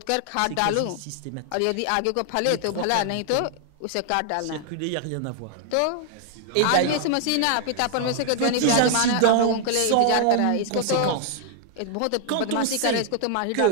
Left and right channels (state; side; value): different; both; correlation 0.00